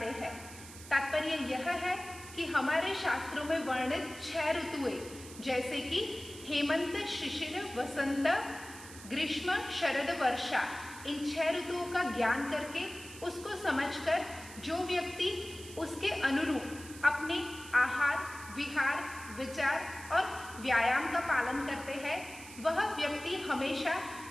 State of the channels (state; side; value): noise; right; hiss, 15 dB below the sound